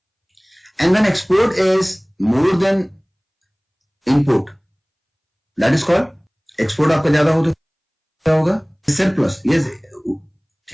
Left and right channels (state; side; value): identical; both; correlation 1.00